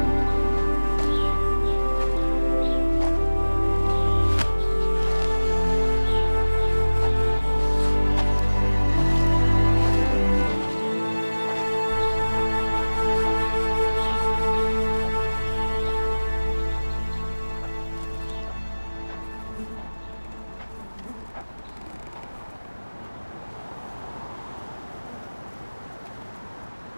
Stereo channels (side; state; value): both; inverted; correlation -1.00